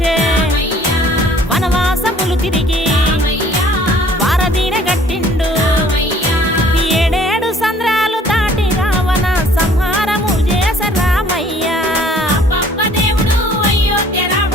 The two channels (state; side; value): normal; both; correlation 0.56